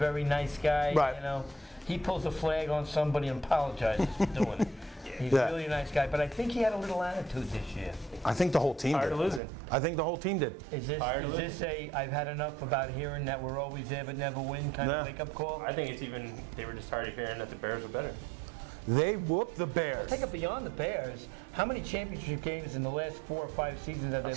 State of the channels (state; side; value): drops out; left; at 9.4 s